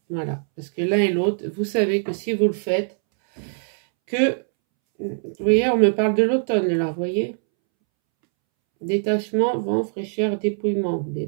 Voilà, parce que l'un et l'autre, vous savez que si vous le faites, vous voyez, on me parle de l'automne là, vous voyez, détachement, vent, fraîcheur, dépouillement, mais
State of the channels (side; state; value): left; silent; 64 dB below the other